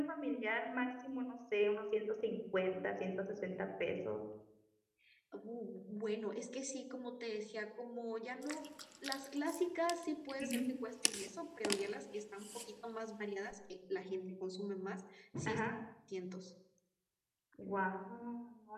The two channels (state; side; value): identical; both; correlation 1.00